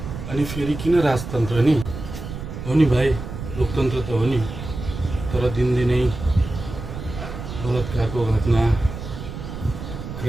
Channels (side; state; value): right; noise; rumble, 9 dB below the sound